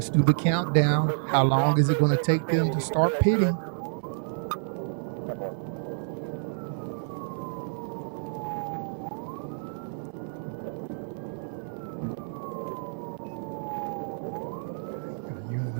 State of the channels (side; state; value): left; silent; digital silence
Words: do the countdown. How long is it going to take them to start pitting? Unit